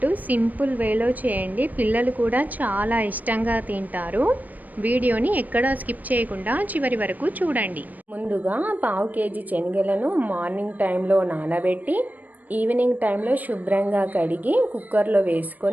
సింపుల్ వేలో చేయండి, పిల్లలు కూడా చాలా ఇష్టంగా తింటారు. వీడియోని ఎక్కడా స్కిప్ చేయకుండా చివరి వరకు చూడండి. ముందుగా పావు కేజీ శనగలను మార్నింగ్ టైంలో నానబెట్టి ఈవినింగ్ టైంలో శుభ్రంగా కడిగి కుక్కర్లో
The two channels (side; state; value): left; late; 0.081 ms